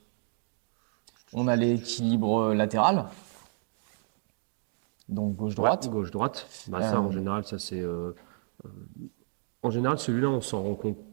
on a l'équilibre latéral. Donc Ouais, gauche-droite. gauche-droite. Bah, ça, en Euh, général, ça c'est. En général, celui-là, on s'en rend compte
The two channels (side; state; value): left; silent; 57 dB below the other